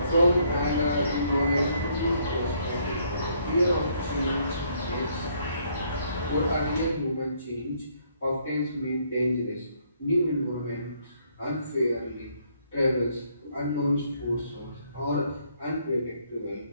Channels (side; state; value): both; inverted; correlation -0.68